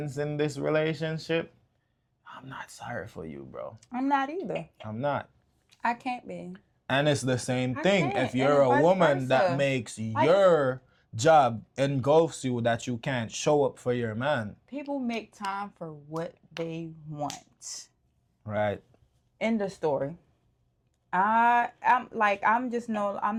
in this relationship, I'm not sorry for you, bro. I'm not either. I'm not. I can't be. And it's the same thing if And you're a vice woman versa. that makes your job engulfs you that you can't show up for your man. People make time for what they want. Right. End of story. I'm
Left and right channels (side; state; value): both; identical; correlation 1.00